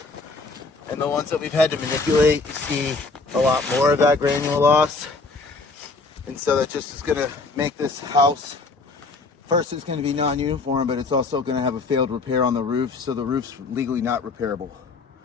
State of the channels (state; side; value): quieter; right; 3.8 dB